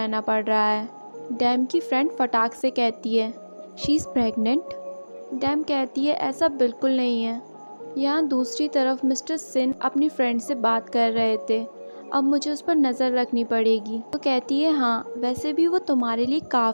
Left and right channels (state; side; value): inverted; both; correlation -1.00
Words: पड़ रहा है। डैम की फ्रेंड फटाक से कहती है, शी इज़ प्रेग्नेंट। डैम कहती है ऐसा बिल्कुल नहीं है। यहाँ दूसरी तरफ मिस्टर सिन अपनी फ्रेंड से बात कर रहे थे। अब मुझे उस पर नज़र रखनी पड़ेगी। तो कहती है हाँ, वैसे भी वो तुम्हारे लिए